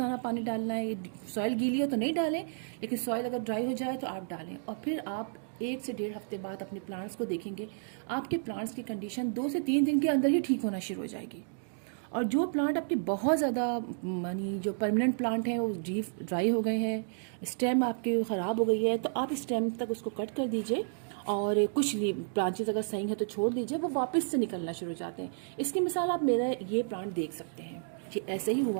पानी डालना है। सॉइल गीली हो तो नहीं डालें, लेकिन सॉइल अगर ड्राई हो जाए तो आप डालें। और फिर आप 1 से 1.5 हफ्ते बाद अपने प्लांट्स को देखेंगे, आपके प्लांट्स की कंडीशन 2 से 3 दिन के अंदर ही ठीक होना शुरू हो जाएगी। और जो प्लांट आपके बहुत ज़्यादा यानी जो परमानेंट प्लांट हैं वो ड्राई हो गए हैं, स्टेम आपके ख़राब हो गई है, तो आप स्टेम तक उसको कट कर दीजिए। और कुछ ब्रांचेस अगर सही है तो छोड़ दीजिए, वो वापस से निकलना शुरू हो जाते हैं। इसकी मिसाल आप मेरा ये प्लांट देख सकते हैं, ये ऐसे ही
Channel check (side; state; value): left; silent; digital silence